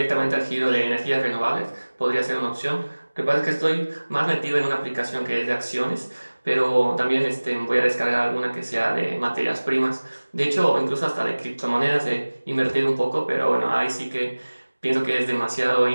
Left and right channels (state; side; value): inverted; both; correlation -1.00